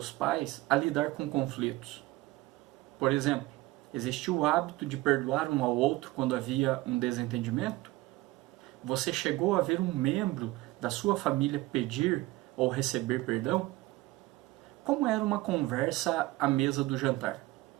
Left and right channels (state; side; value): quieter; left; 19.2 dB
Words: pais a lidar com conflitos? Por exemplo, existia o hábito de perdoar um ao outro quando havia um desentendimento? Você chegou a ver um membro da sua família pedir ou receber perdão? Como era uma conversa à mesa do jantar?